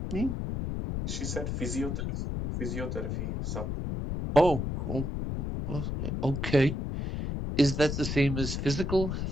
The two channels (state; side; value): noise; left; rumble, 3 dB below the sound